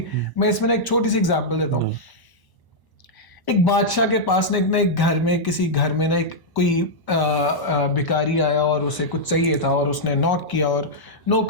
मैं इसमें ना एक छोटी सी एग्जांपल देता हूँ। एक बादशाह के पास ना एक घर में, किसी घर में ना एक कोई भिखारी आया और उसे कुछ चाहिए था, और उसने नॉक किया और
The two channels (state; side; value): late; right; 1.0 ms